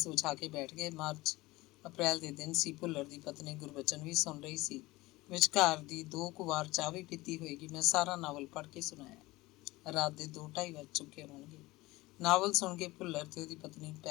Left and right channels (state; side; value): quieter; right; 20.0 dB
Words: ਵਿਛਾ ਕੇ ਬੈਠ ਗਏ। ਅਪ੍ਰੈਲ ਦੇ ਦਿਨ ਸੀ। ਭੁੱਲਰ ਦੀ ਪਤਨੀ ਗੁਰਬਚਨ ਵੀ ਸੁਣ ਰਹੀ ਸੀ। ਵਿਚਕਾਰ ਦੀ 2 ਕੁ ਵਾਰ ਚਾਹ ਵੀ ਪੀਤੀ ਹੋਏਗੀ। ਮੈਂ ਸਾਰਾ ਨਾਵਲ ਪੜ੍ਹ ਕੇ ਸੁਣਾਇਆ। ਰਾਤ ਦੇ 2-2:30 ਵੱਜ ਚੁੱਕੇ ਹੋਣਗੇ। ਨਾਵਲ ਸੁਣ ਕੇ ਭੁੱਲਰ ਤੇ ਉਹਦੀ ਪਤਨੀ